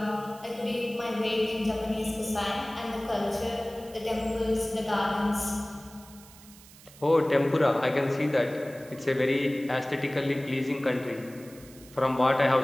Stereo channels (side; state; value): right; noise; hiss, 21 dB below the sound